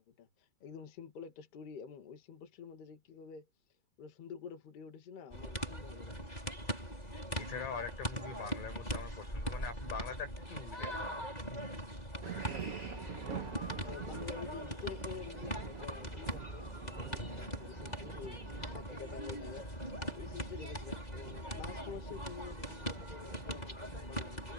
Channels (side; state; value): right; late; 2.3 ms